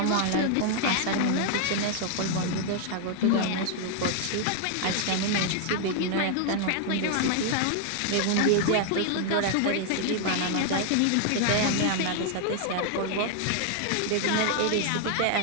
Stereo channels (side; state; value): both; different; correlation 0.00